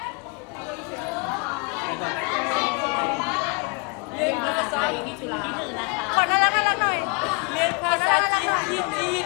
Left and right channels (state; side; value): quieter; right; 32.9 dB